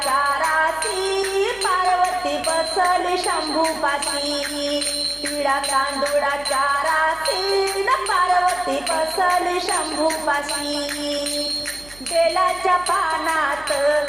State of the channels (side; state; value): right; noise; hum, 22 dB below the sound